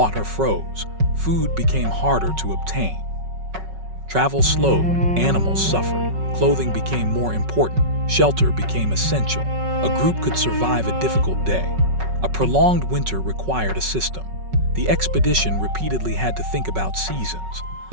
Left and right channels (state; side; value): late; left; 5.4 ms